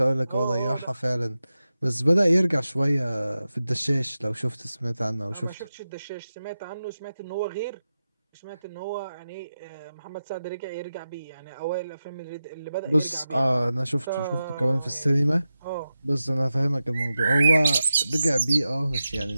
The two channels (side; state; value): both; inverted; correlation -0.92